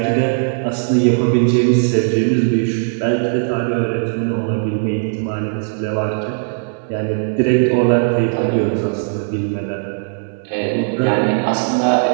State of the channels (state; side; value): silent; left; 61 dB below the other